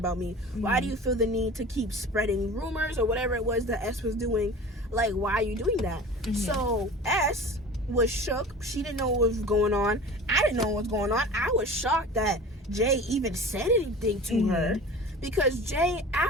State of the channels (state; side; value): normal; both; correlation 0.38